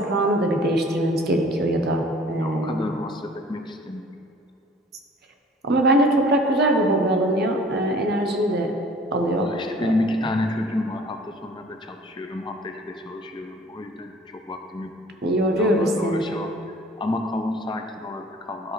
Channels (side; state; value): both; normal; correlation 0.50